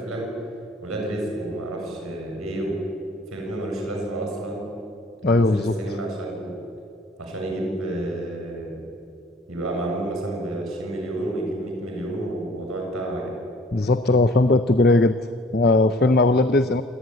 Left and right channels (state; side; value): normal; both; correlation 0.53